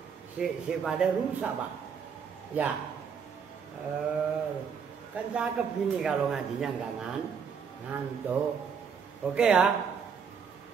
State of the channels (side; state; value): left; quieter; 6.5 dB